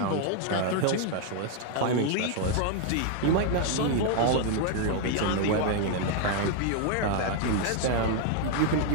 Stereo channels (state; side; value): different; both; correlation 0.00